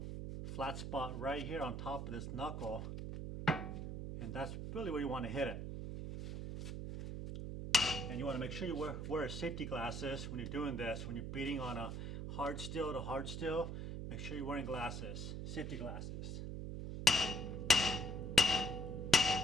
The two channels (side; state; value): right; noise; hum, 5 dB below the sound